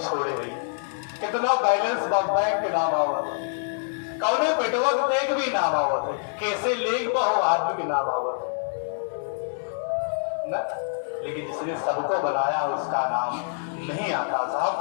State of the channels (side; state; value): right; silent; digital silence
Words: गई, कितना बैलेंस बैंक के नाम आवत, कौने पेटवक देख भी नाम आवत है, कैसे लेग बहु आदमी के नाम आवत न, लेकिन जिसने सबको बनाया उसका नाम नहीं आता